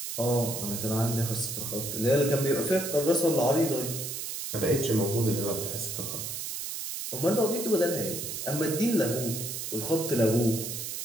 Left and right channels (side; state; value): right; noise; hiss, 5 dB below the sound